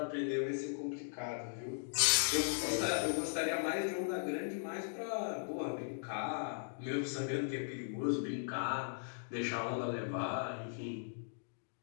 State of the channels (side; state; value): right; silent; digital silence